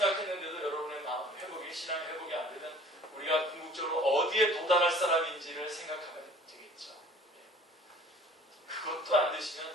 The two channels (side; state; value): both; normal; correlation 0.50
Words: 여러분의 마음 회복이, 신앙의 회복이 안 되면 우리가 궁극적으로 어디에 도달할 사람인지를 생각하면 되겠죠. 그것도 안